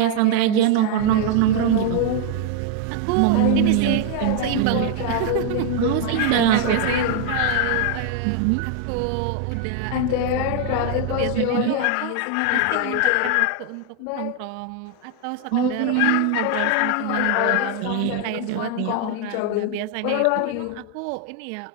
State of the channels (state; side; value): different; both; correlation 0.00